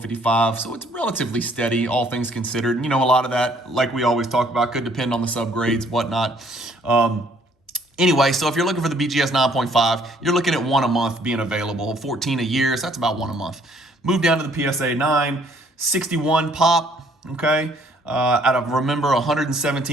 So it's relatively steady, all things considered. A lot of that, like we always talk about, could depend on the subgrades, whatnot. Anyway, so if you're looking for the BGS 9.5, you're looking at 1 a month being available. 14 a year, so that's about 1 a month. Move down to the PSA 9, 61 pop, okay? Out of, remember,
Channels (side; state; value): both; normal; correlation 0.62